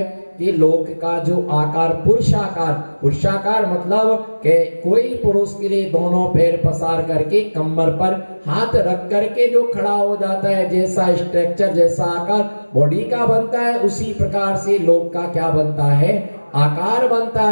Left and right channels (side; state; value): both; inverted; correlation -1.00